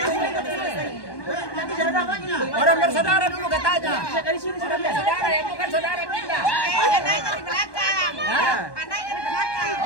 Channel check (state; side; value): late; right; 1.1 ms